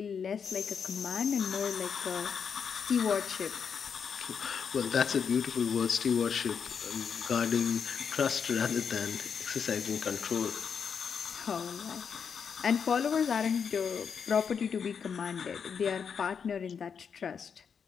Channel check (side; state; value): right; quieter; 6.7 dB